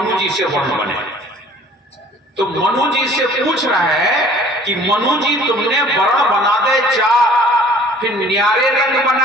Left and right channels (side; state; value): both; normal; correlation 0.52